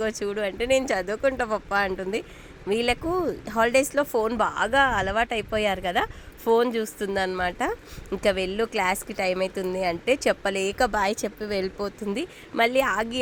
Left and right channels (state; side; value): identical; both; correlation 1.00